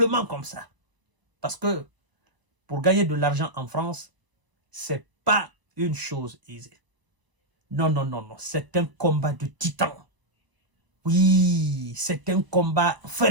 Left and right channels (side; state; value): left; late; 1.0 ms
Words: comme ça. Parce que pour gagner de l'argent en France, c'est pas une chose aisée. Non, non, non, non. C'est un combat de titan. Oui, c'est un combat